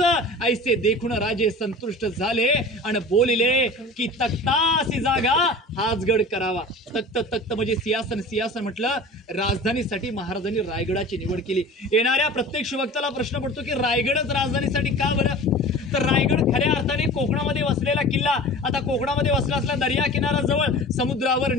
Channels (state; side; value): normal; both; correlation 0.39